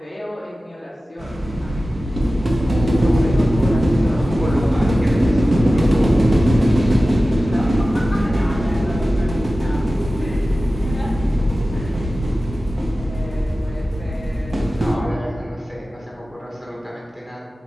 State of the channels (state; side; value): normal; both; correlation 0.95